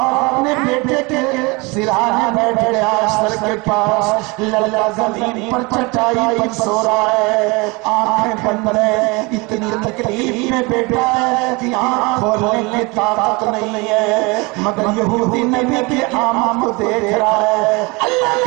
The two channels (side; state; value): left; quieter; 26.6 dB